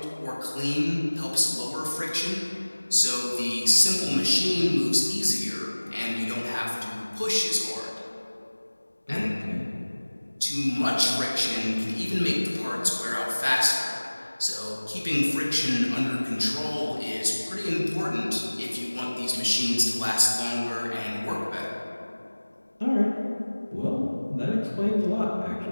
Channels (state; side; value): inverted; both; correlation -1.00